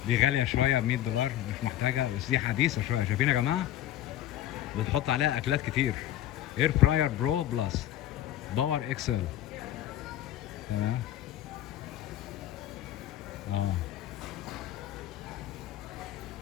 دي غالية شوية ب$100، مش محتاجة، بس دي حديثة شوية. شايفين يا جماعة؟ بتحط عليها أكلات كتير. اير فراير برو بلس باور اكسل. تمام.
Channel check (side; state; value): right; quieter; 12.7 dB